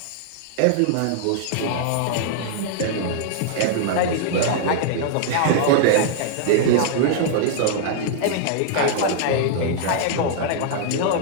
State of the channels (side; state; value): both; different; correlation -0.01